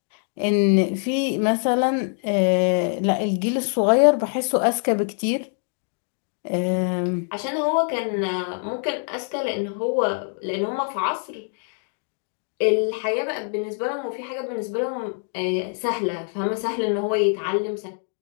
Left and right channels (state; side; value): silent; right; 58 dB below the other